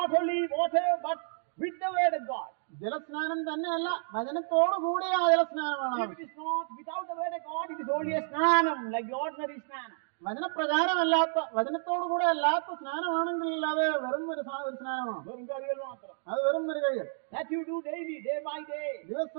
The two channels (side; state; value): left; silent; digital silence